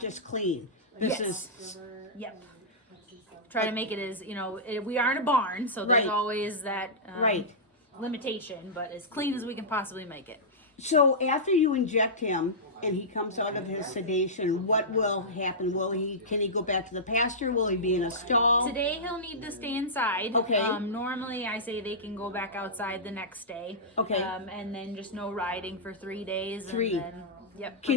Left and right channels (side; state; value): both; normal; correlation -0.15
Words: clean. This is. Yep. Try to make it as we are in a barn, so there's always that limitation, but as clean as we can possibly make it. So after you inject him and he comes out of his sedation, what will happen? Can he go back to the pasture? Will he be in a stall? Today he'll need to stay inside. Okay. Normally I say they can go back outside the next day. Okay. And then just no riding for 3 days. 3. And then, yep.